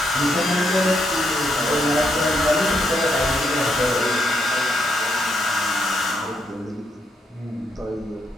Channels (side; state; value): both; normal; correlation 0.78